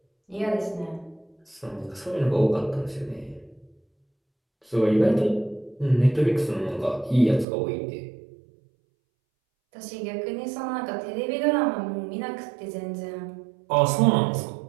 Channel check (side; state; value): left; drops out; at 7.5 s